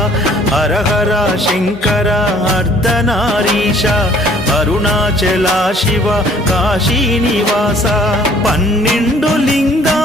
హర హర శంకర అర్ధనారీశ అరుణాచల శివ కాశీనివాస 12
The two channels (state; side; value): normal; both; correlation 0.57